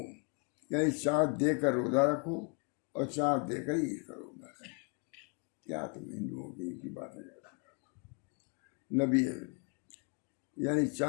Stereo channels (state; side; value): quieter; right; 37.3 dB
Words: یعنی چاند دیکھ کر روزہ رکھو اور چاند دیکھ کر عید کرو. بس کیا تم ہندوؤں کی باتیں کرتے ہو؟ نبی یعنی